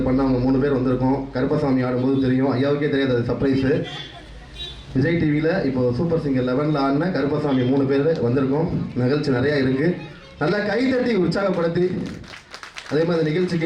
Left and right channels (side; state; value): both; identical; correlation 1.00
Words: பண்ண அவங்க 3 பேர் வந்திருக்கோம். கருப்பசாமி ஆடும்போது தெரியும், ஐயாவுக்கே தெரியாது, அது சர்ப்ரைஸு. விஜய் டிவியில் இப்போ சூப்பர் சிங்கர் 11 ஆடின கருப்பசாமி 3 பேர் வந்திருக்கோம். நிகழ்ச்சி நிறையா இருக்குது. நல்லா கைதட்டி உற்சாகப்படுத்தி அதே மாதிரி